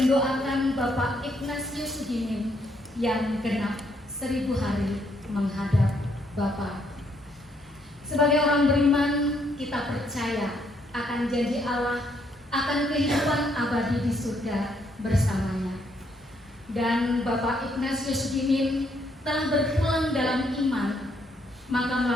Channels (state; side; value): normal; both; correlation 0.72